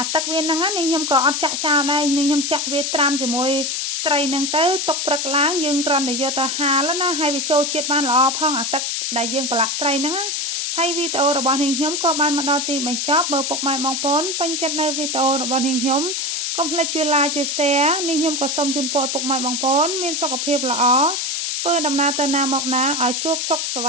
ទឹកវាហ្នឹងនេះខ្ញុំក៏អត់ចាក់ចោលដែរនេះខ្ញុំចាក់វាត្រាំជាមួយត្រីហ្នឹងទៅទុកព្រឹកឡើងយើងគ្រាន់តែយកទៅហាលណាហើយវាចូលជាតិបានល្អផងអាទឹកដែលយើងប្រឡាក់ត្រីហ្នឹងហើយវីដេអូរបស់នាងខ្ញុំក៏បានមកដល់ទីបញ្ចប់បើពុកម៉ែបងប្អូនពេញចិត្តនៅវីដេអូរបស់នាងខ្ញុំកុំភ្លេចជួយ like ជួយ share នាងខ្ញុំក៏សូមជូនពរឲ្យពុកម៉ែបងប្អូនមានសុខភាពល្អធ្វើដំណើរទៅណាមកណាឲ្យជួបសុខសុវ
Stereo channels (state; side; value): noise; left; hiss, 1 dB below the sound